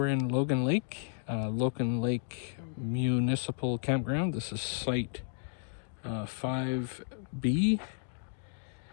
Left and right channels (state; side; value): silent; right; digital silence